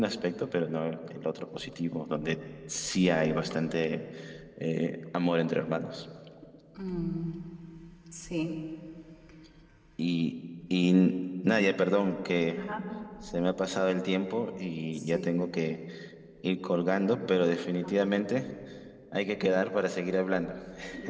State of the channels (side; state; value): both; identical; correlation 1.00